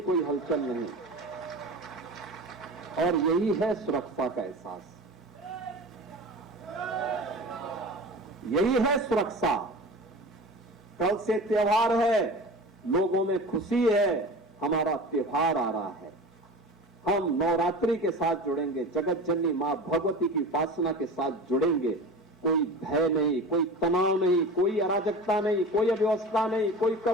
कोई हलचल नहीं। और यही है सुरक्षा का एहसास, यही है सुरक्षा। कल से त्योहार है, लोगों में खुशी है, हमारा त्योहार आ रहा है। हम नवरात्रि के साथ जुड़ेंगे, जगत जननी मां भगवती की उपासना के साथ जुड़ेंगे। कोई भय नहीं, कोई तनाव नहीं, कोई अराजकता नहीं, कोई अव्यवस्था नहीं, कोई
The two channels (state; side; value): normal; both; correlation 0.34